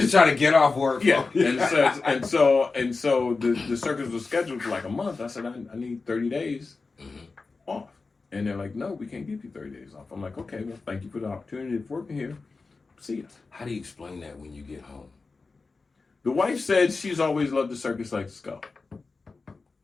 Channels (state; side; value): quieter; right; 4.1 dB